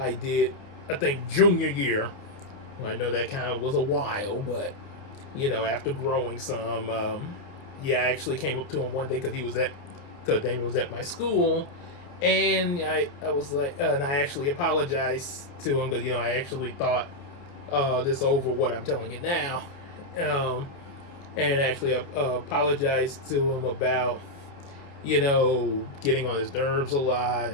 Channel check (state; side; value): late; right; 29 ms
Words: did, I think, junior year. Well, I know that kind of was a while, but after growing some, I actually came up to him one day because Damien was at my school, and I was like, and I actually apologized to him, because I actually thought this over what I'm telling you now, and actually apologized to him about getting on his nerves a lot,